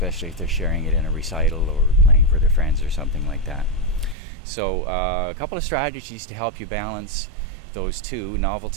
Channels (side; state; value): left; drops out; at 4.2 s